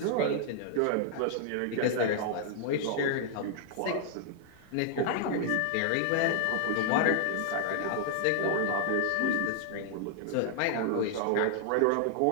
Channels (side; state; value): both; different; correlation 0.00